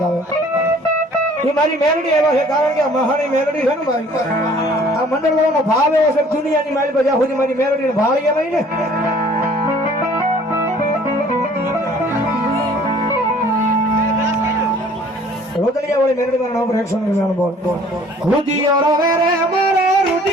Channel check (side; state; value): both; normal; correlation 0.54